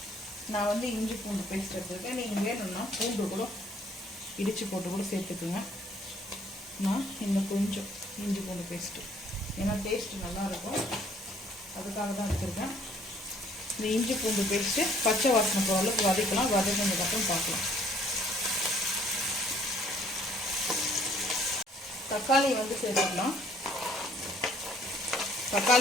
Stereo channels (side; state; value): both; normal; correlation 0.61